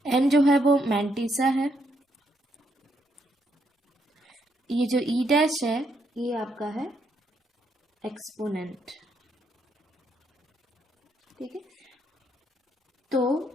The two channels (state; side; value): normal; both; correlation 0.76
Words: n जो है वो मैंटिसा है, ये जो e डैश है ये आपका है एक्सपोनेंट, ठीक है। तो